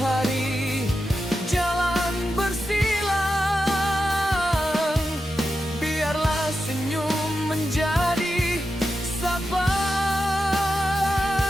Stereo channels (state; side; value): normal; both; correlation 0.89